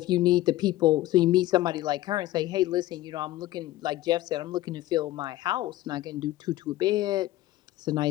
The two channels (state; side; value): quieter; right; 15.9 dB